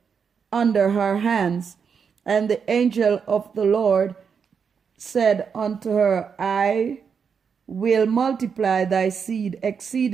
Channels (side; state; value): left; quieter; 6.4 dB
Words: her hands. And the angel of the Lord said unto her, I will multiply thy seed